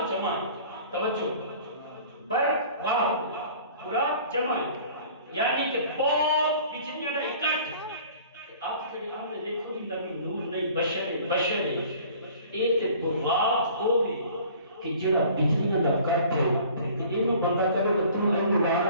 جمع توجہ بر واہ براق جمع یعنی کہ بہت بجلیاں دا اکٹھ آپ جڑے آنے دیکھو کہ نبی نور نہیں بشر اے تے براق ہو بھی کہ جڑا بجلیاں دا اکٹھ تے اینو بندہ کرے تو تو اینو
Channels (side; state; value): both; inverted; correlation -0.49